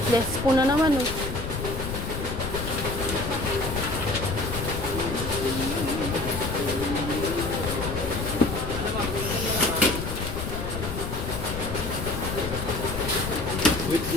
Desko na naman, oh.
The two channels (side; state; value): left; noise; rumble, 5 dB below the sound